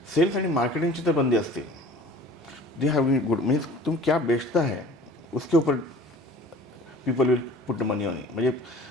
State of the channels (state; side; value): normal; both; correlation 0.46